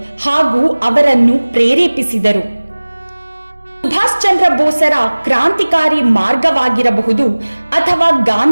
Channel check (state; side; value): inverted; both; correlation -1.00